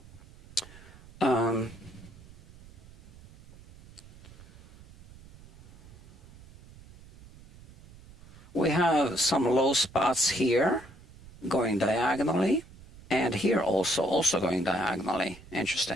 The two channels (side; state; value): right; noise; rumble, 21 dB below the sound